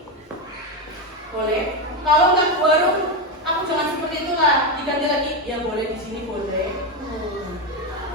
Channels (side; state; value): both; normal; correlation 0.11